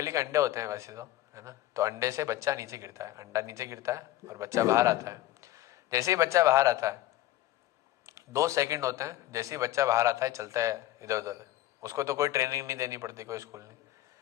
के अंडे होते हैं वैसे तो, है ना, तो अंडे से बच्चा नीचे गिरता है, अंडा नीचे गिरता है और बच्चा बाहर आता है। जैसे ही बच्चा बाहर आता है 2 सेकंड होते हैं, जैसे ही बच्चा बाहर आता है चलता है इधर उधर, उसको तो कोई ट्रेनिंग नहीं देनी पड़ती, कोई स्कूल नहीं।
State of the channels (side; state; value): right; quieter; 14.8 dB